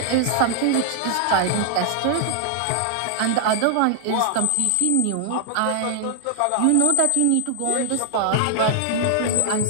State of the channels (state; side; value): different; both; correlation 0.00